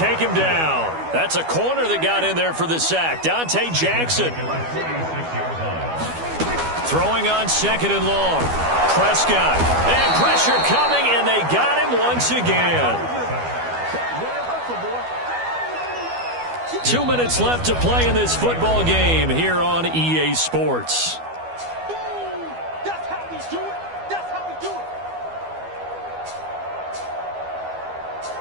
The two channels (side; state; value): left; late; 12 ms